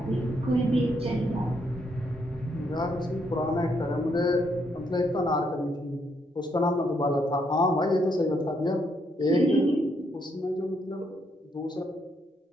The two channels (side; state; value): both; normal; correlation 0.75